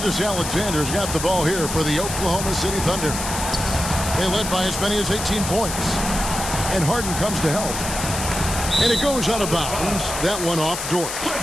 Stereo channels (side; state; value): left; noise; hiss, 5 dB below the sound